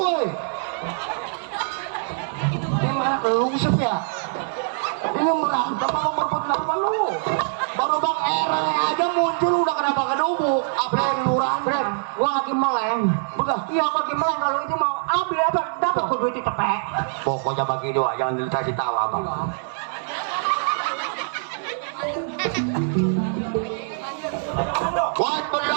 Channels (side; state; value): left; silent; digital silence